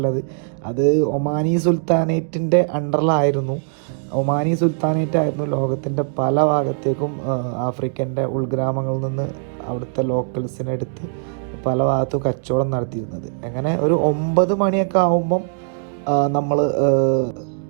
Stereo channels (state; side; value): silent; left; digital silence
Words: അത് ഒമാനി സുൽത്താനേറ്റിൻ്റെ അണ്ടറിലായിരുന്നു. ഒമാനി സുൽത്താനേറ്റ് ആയിരുന്നു ലോകത്തിൻ്റെ പല ഭാഗത്തേക്കും ആഫ്രിക്കൻ്റെ ഉൾഗ്രാമങ്ങളിൽ നിന്ന് അവിടുത്തെ ലോക്കൽസിനെടുത്ത് പല ഭാഗത്തും കച്ചവടം നടത്തിയിരുന്നത്. അങ്ങനെ ഒരു 9 മണിയൊക്കെ ആകുമ്പം നമ്മൾ